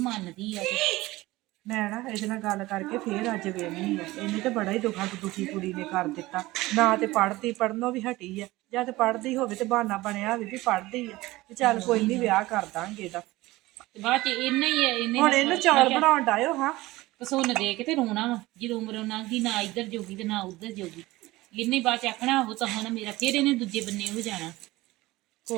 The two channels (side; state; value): left; quieter; 19.0 dB